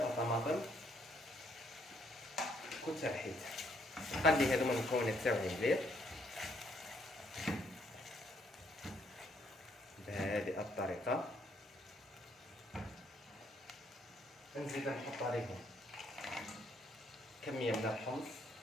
طماطم كنت رحيتها. نقلي هذوما المكونات تاعي مليح بهذه الطريقه. نزيد نحط عليهم كميه من الحمص،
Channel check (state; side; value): normal; both; correlation 0.69